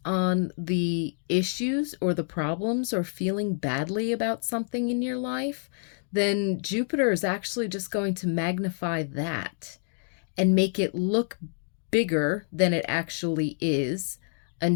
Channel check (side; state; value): right; silent; 59 dB below the other